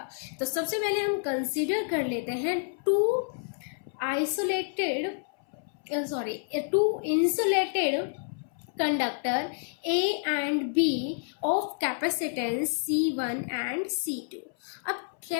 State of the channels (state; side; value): silent; right; 58 dB below the other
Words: तो सबसे पहले हम कंसीडर कर लेते हैं two insulated conductor A and B of capacitance C1 and C2। अब